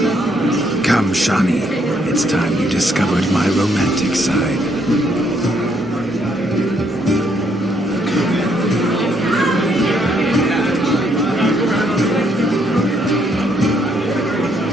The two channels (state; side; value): normal; both; correlation 0.71